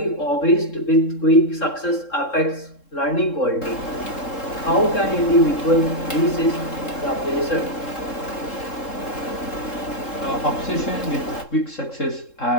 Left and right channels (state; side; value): late; right; 3.7 ms